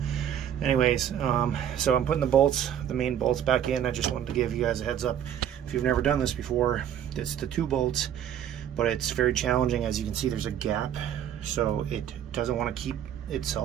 Anyways, so I'm putting the main bolts back in. I just wanted to give you guys a heads up. If you've never done this before, it's the 2 bolts, but it's very challenging. As you can see, there's a gap, so it doesn't want to keep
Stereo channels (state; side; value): quieter; left; 9.9 dB